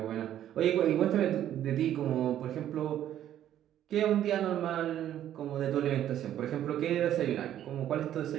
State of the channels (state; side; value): quieter; left; 11.4 dB